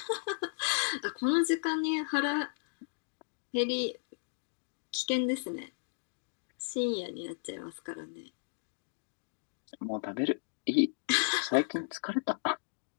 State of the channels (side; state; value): right; silent; digital silence